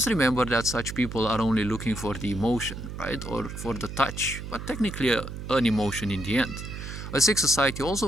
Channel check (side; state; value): right; noise; hum, 8 dB below the sound